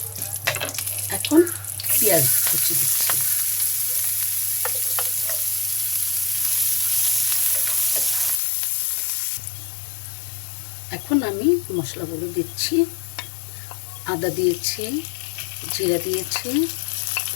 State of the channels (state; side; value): drops out; right; at 8.4 s